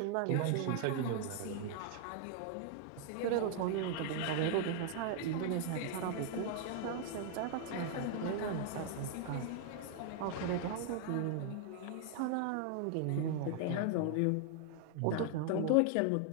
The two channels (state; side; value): different; both; correlation 0.00